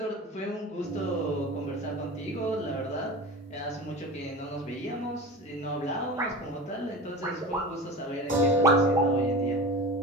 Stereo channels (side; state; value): both; normal; correlation 0.32